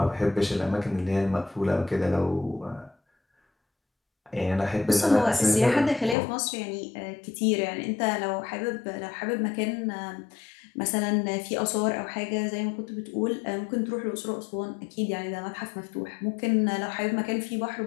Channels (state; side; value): drops out; right; at 6.2 s